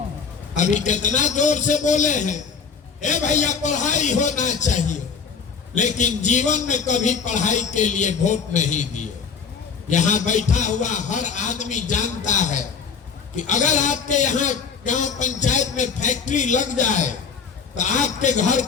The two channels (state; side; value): quieter; right; 6.0 dB